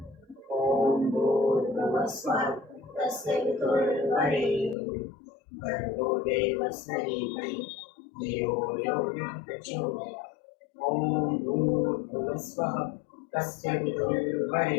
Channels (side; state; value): right; drops out; at 4.8 s